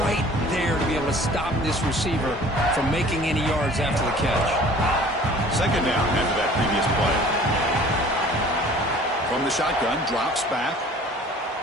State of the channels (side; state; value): both; normal; correlation 0.49